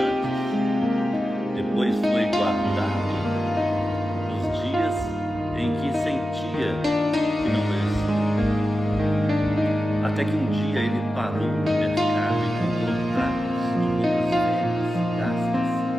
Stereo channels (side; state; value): both; normal; correlation 0.92